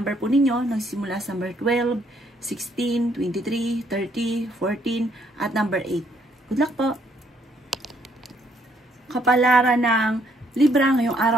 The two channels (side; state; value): both; normal; correlation 0.69